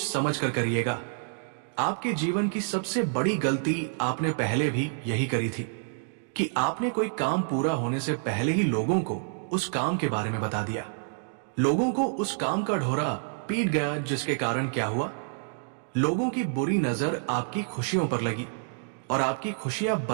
समझ कर करिएगा। आपके जीवन की सबसे बड़ी गलती आपने पहले भी यही करी थी कि आपने कोई काम पूरा होने से पहले ही लोगों को उस काम के बारे में बता दिया। लोगों को उस काम का ढोरा पीट गया, जिसके कारण क्या हुआ, लोगों की बुरी नजर आपकी खुशियों पर लगी और आपकी खुशियां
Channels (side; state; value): left; silent; digital silence